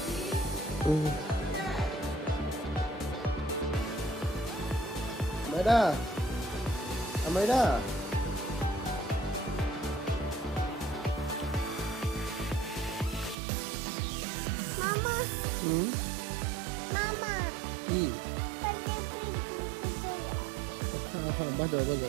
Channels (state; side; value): drops out; left; at 13.4 s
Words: Amaira. Amaira. হুম কি হ্যাঁ বাজাও